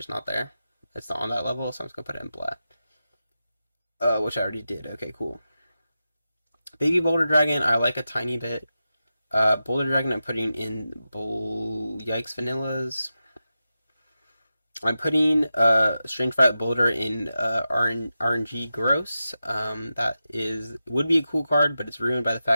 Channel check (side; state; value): both; inverted; correlation -0.91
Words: not there. It's not on that level, so I'm just going to put it in black. Which I already did. Okay, cool. Baby Boulder Dragon, I like a tiny bit. Boulder Dragon, I'm putting in Yikes Vanillas. I'm putting Strange Violet Boulder in RNG Gross. That would be a cool card, but it's ruined by the